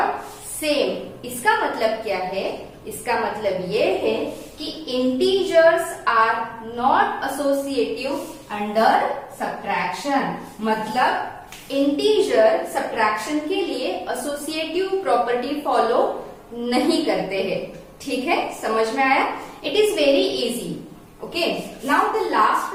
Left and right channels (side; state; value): both; identical; correlation 1.00